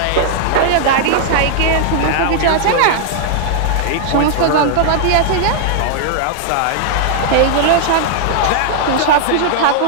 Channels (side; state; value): both; different; correlation -0.01